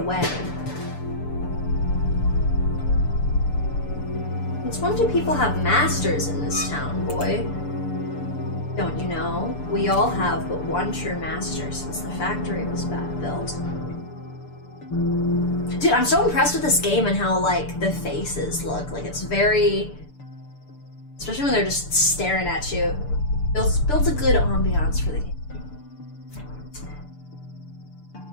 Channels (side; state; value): right; late; 6.8 ms